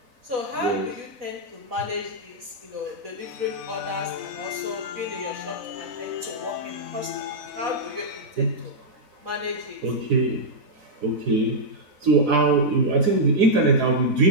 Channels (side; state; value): left; late; 4.1 ms